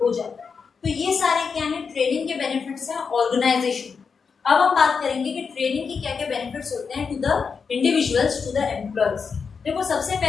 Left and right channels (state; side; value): quieter; right; 5.6 dB